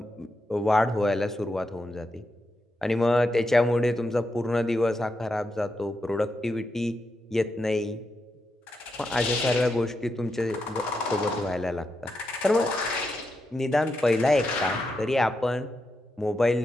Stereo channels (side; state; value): both; normal; correlation 0.85